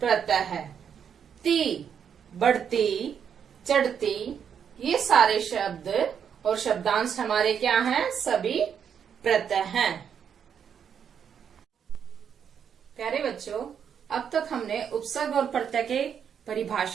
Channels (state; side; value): quieter; left; 7.8 dB